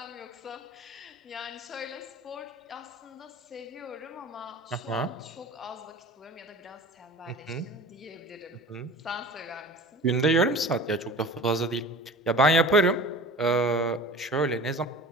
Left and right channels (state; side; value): normal; both; correlation 0.39